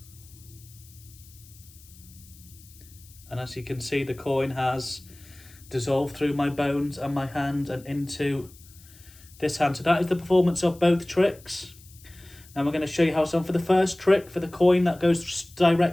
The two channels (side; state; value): left; noise; hiss, 24 dB below the sound